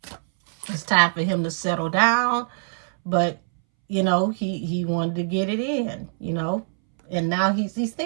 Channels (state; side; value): silent; left; 63 dB below the other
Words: It's time for him to settle down. But, you know, he wanted to get it in, you know. And now he's